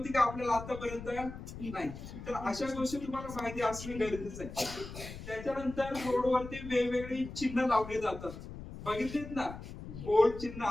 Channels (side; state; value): left; noise; rumble, 11 dB below the sound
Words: का आपल्याला आतापर्यंत? नाही. तर अशा गोष्टी तुम्हाला माहिती असणं गरजेचं आहे. त्याच्यानंतर रोडवरती वेगवेगळी चिन्ह लावली जातात. बघितलीत ना? गोल चिन्ह